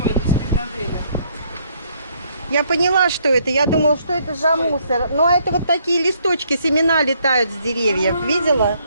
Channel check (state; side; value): inverted; both; correlation -0.68